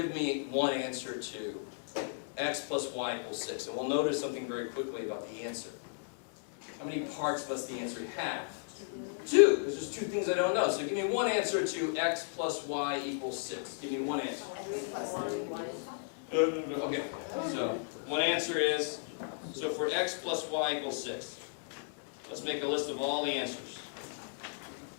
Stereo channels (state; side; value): silent; right; digital silence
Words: me one answer to x plus y equals 6? And we'll notice something very quickly about the answer. How many parts must the answer have? 2, because there's 2 things I don't know. So give me one answer to x plus y equals 6. Give me one answer. Okay, so one answer is, so for x plus y equals 6, let's make a list of all the answers.